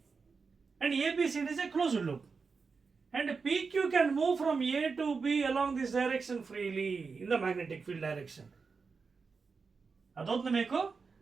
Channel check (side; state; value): left; quieter; 4.9 dB